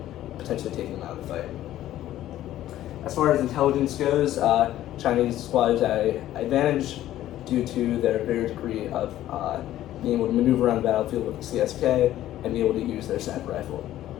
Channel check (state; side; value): quieter; right; 13.4 dB